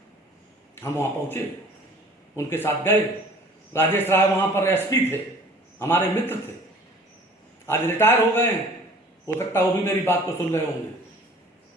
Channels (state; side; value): normal; both; correlation 0.49